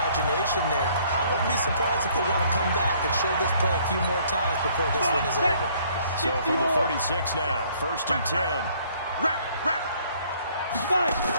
there. I wouldn't be surprised if they want to come back and show this play a few more times before this one is over. So from the 36 now, 1st and 10. Wrap.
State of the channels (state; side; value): inverted; both; correlation -0.61